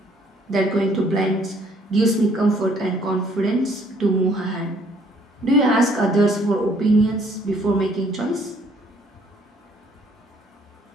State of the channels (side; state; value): both; normal; correlation 0.63